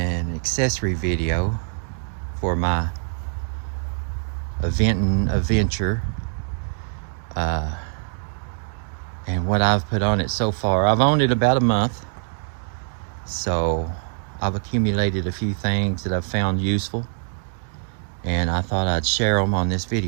accessory video for my Aventon Aventure, and what I've put on it so far. I've owned it about a month, so I've accumulated a few things that I've found useful, and I thought I'd share them on this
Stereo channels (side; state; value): left; silent; digital silence